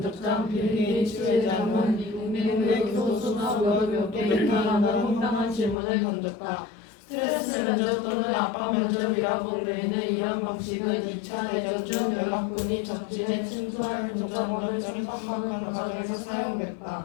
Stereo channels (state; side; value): drops out; right; at 5.8 s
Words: 빌 게이츠 회장은 미국의 교수수업을 몇 개 이탈하는 황당한 질문을 던졌다. 스트레스 면접 또는 압박 면접이라고 불리는 이런 방식은 2차 대전 중 연합군이 적진에 침투할 군사권을 침범하는 과정에서 사용됐다.